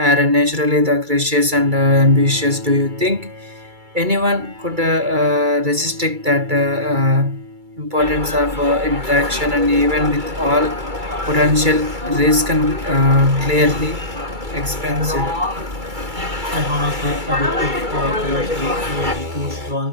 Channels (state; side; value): late; left; 2.3 ms